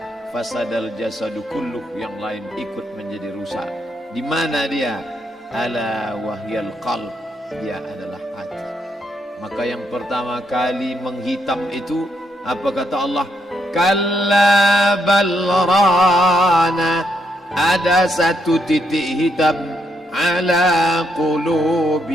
fasadal jasadu kulluh, yang lain ikut menjadi rusak. Di mana dia? Ala wahyal qalb, dia adalah hati. Maka yang pertama kali menghitam itu apa kata Allah? Kalla bal rana, ada satu titik hitam, ala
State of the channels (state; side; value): normal; both; correlation 0.77